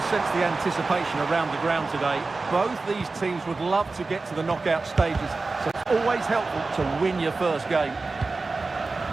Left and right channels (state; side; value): quieter; left; 3.7 dB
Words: sense the anticipation around the ground today. Both these teams would love to get to the knockout stages, so it's always helpful to win your first game.